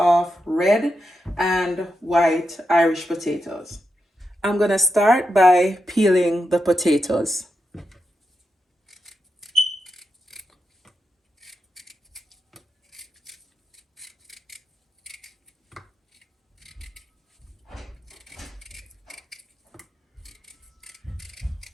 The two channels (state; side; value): normal; both; correlation 0.87